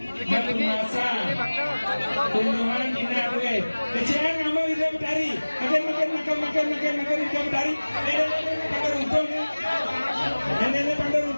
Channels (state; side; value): inverted; both; correlation -1.00